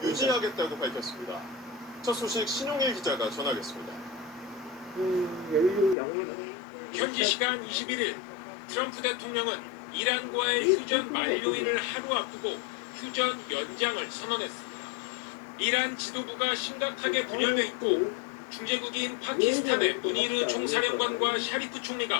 유지하겠다고 밝혔습니다. 첫 소식 신용일 기자가 전하겠습니다. 연료 양호하네. 현지 시간 21일 트럼프 대통령은 이란과의 휴전 만료일을 하루 앞두고 휴전 연장을 선언했습니다. 이란 지도부가 심각하게 분열돼 있고 중재국인 파키스탄의 무니르 총사령관과 샤리프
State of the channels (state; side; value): drops out; right; at 6.0 s